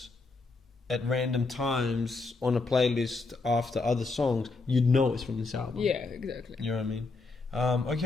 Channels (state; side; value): quieter; right; 3.8 dB